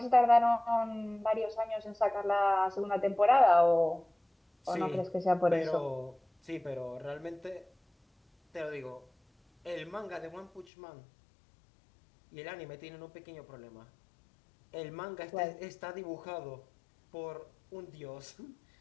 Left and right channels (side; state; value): right; drops out; at 10.7 s